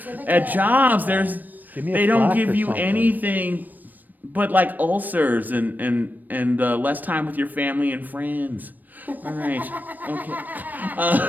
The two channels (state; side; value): late; left; 0.087 ms